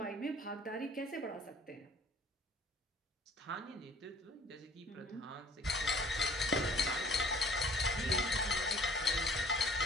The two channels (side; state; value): both; normal; correlation 0.53